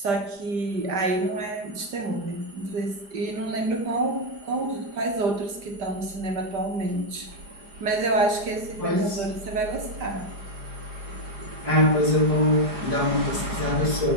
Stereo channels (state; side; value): late; left; 5.1 ms